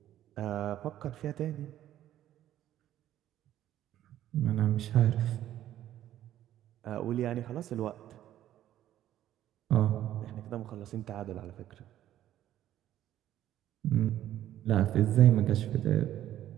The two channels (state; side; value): quieter; left; 12.4 dB